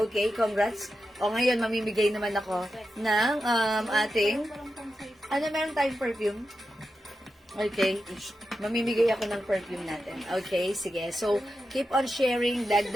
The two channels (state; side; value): normal; both; correlation 0.89